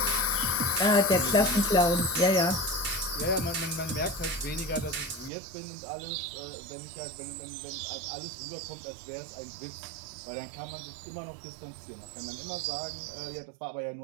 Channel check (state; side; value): drops out; left; at 5.3 s